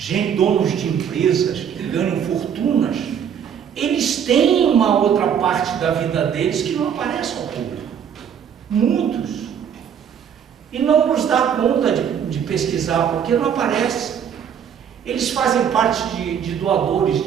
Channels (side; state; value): left; quieter; 8.2 dB